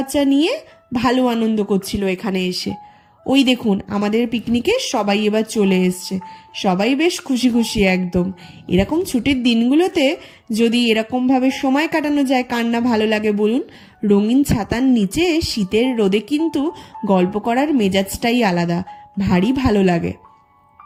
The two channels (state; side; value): identical; both; correlation 1.00